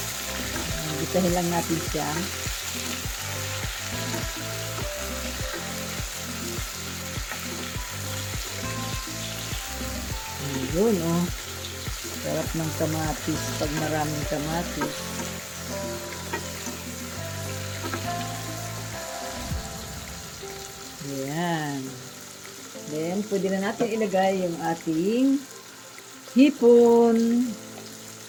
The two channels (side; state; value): both; identical; correlation 1.00